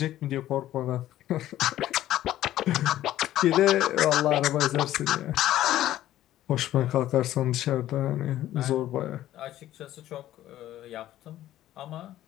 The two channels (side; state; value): right; quieter; 13.5 dB